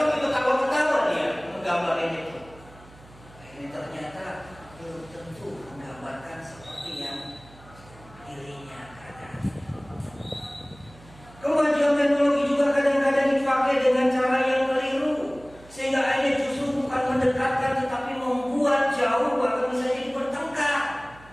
ketawa-ketawa dia menggambarin itu. Ini ternyata belum tentu menggambarkan seperti yang dirinya katakan. Kemajuan teknologi juga juga kadang-kadang dipakai dengan cara yang keliru, sehingga akhirnya justru bukan mendekatkan tetapi membuat jauh, bahkan bisa jadi bertengkar.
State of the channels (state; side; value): noise; right; hum, 23 dB below the sound